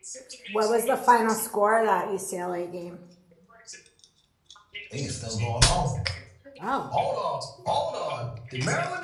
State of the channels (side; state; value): both; identical; correlation 1.00